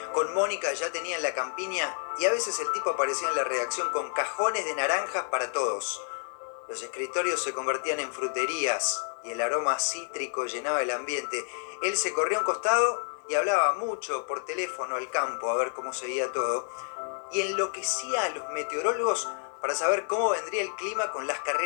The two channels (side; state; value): right; silent; 58 dB below the other